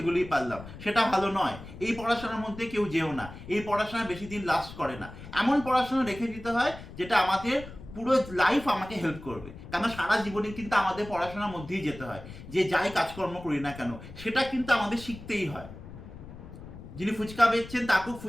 পারলাম, সেটা ভালো নয়। এই পড়াশোনার মধ্যে কেউ যেও না, এই পড়াশোনা বেশি দিন লাস্ট করে না। এমন পড়াশোনা রেখে দিতে হয় যেটা আমাদের পুরো লাইফ আমাকে হেল্প করবে। কেন সারা জীবনে কিন্তু আমাদের পড়াশোনার মধ্যেই যেতে হয়, যে যাই কাজকর্ম করি না কেন সেটা কিন্তু আমাদের শিখতেই হয়। যিনি ফুচকা বেচছেন তাকেও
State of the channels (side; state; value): left; noise; rumble, 14 dB below the sound